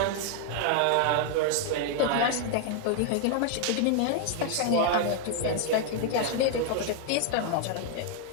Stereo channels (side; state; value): both; different; correlation 0.00